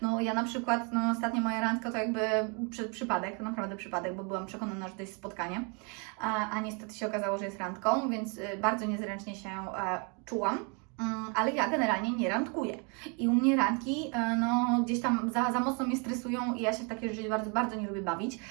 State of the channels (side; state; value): left; quieter; 34.7 dB